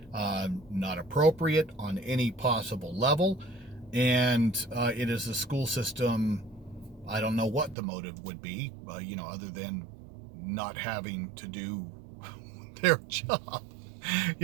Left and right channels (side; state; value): left; drops out; at 7.8 s